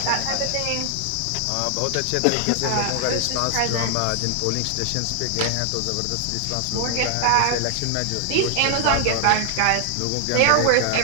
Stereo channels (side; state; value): both; different; correlation 0.00